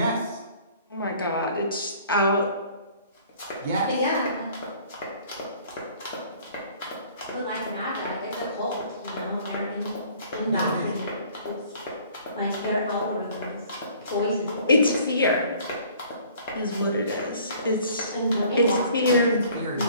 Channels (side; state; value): both; inverted; correlation -0.54